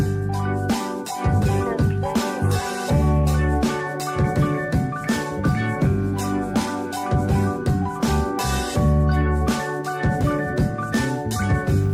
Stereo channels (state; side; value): identical; both; correlation 1.00